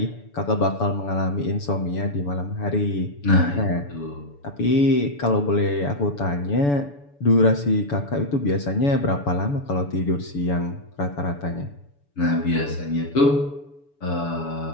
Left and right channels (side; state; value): right; late; 7.0 ms